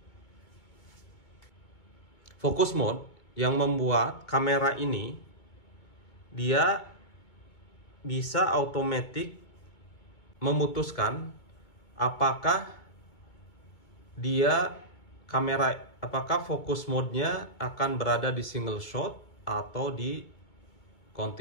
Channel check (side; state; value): right; late; 2.2 ms